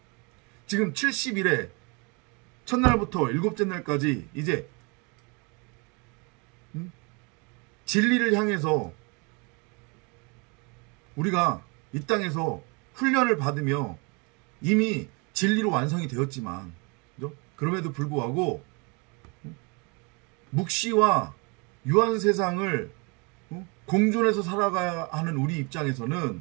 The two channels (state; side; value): quieter; left; 30.9 dB